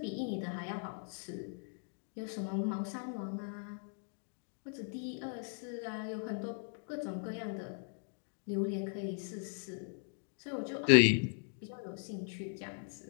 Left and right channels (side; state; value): right; silent; 52 dB below the other